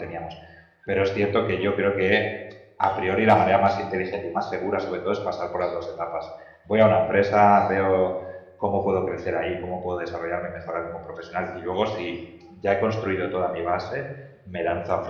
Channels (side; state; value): both; identical; correlation 1.00